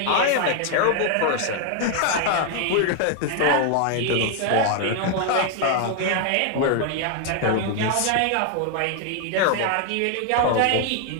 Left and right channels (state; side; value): different; both; correlation 0.00